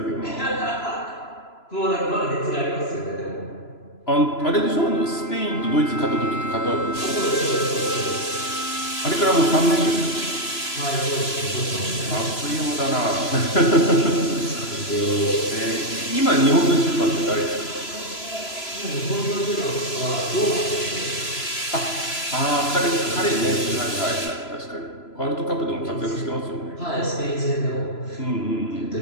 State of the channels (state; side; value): late; right; 3.0 ms